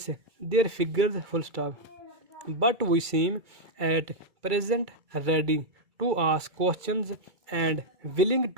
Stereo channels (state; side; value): late; left; 2.3 ms